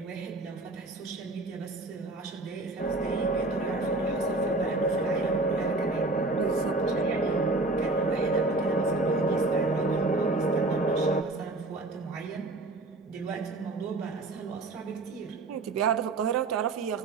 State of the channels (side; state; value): left; quieter; 3.0 dB